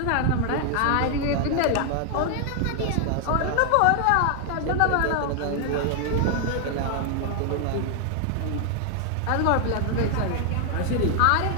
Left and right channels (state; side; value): different; both; correlation 0.00